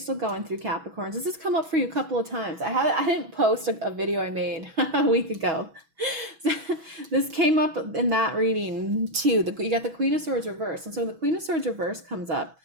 going through, Capricorns. This has come up for you a couple of times. I didn't post a video I made a week ago. This came up in that reading too. You got the Queen of Swords reverse. And so when the Queen of Swords reverse comes up,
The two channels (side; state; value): left; late; 6.2 ms